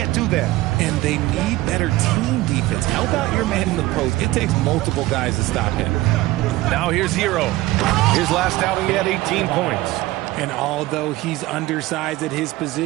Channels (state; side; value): quieter; left; 18.0 dB